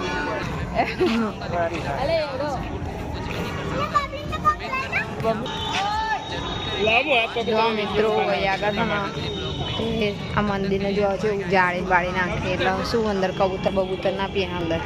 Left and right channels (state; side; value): identical; both; correlation 1.00